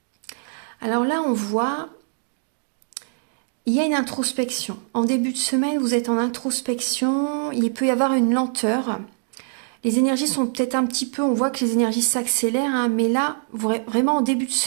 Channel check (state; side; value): silent; left; digital silence